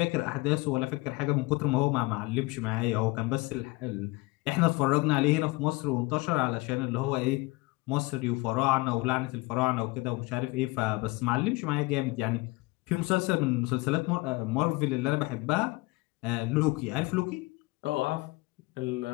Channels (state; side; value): quieter; right; 24.0 dB